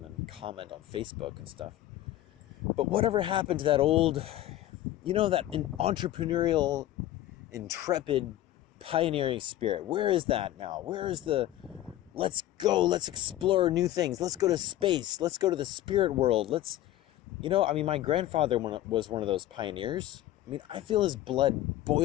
then comment on Facebook and stuff. But whatever happened to that old, you know, that entrepreneurial, intrepid, pioneering spirit? Where is that now? Where is the, let's go, let's explore new things, let's go to space, let's go to the spirit world, let's, you know, I mean, my grandfather was one of those pioneers. I mean, I feel his blood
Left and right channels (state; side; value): quieter; right; 14.1 dB